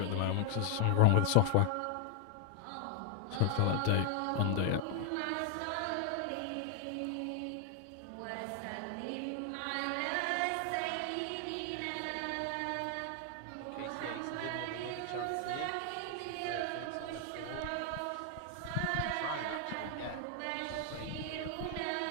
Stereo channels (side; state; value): both; different; correlation 0.00